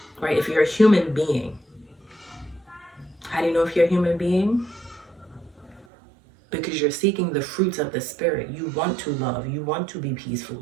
right? If you're a human being. How do you know if you're a human being? Because you're seeking the fruits of the Spirit. You want to love. You want to be peaceful.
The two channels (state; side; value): drops out; left; at 5.9 s